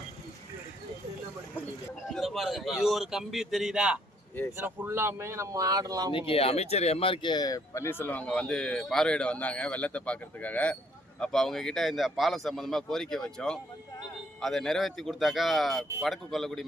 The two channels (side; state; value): both; normal; correlation 0.67